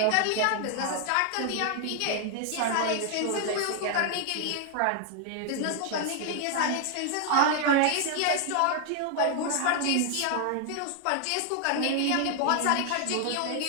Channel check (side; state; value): both; different; correlation 0.00